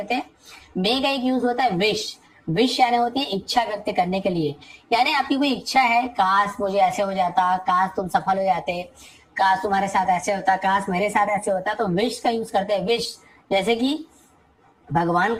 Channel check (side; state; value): both; identical; correlation 1.00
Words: हैं। मे का एक यूज होता है विश। विश यानी होती है इच्छा व्यक्त करने के लिए, यानी आपकी कोई इच्छा है, काश मुझे ऐसे हो जाता, काश तुम सफल हो जाते, काश तुम्हारे साथ ऐसे होता, काश मेरे साथ ऐसे होता, तो विश का यूज करते हैं। विश जैसे कि भगवान